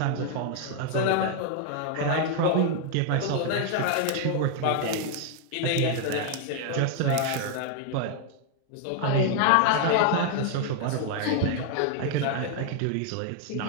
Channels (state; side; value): different; both; correlation 0.00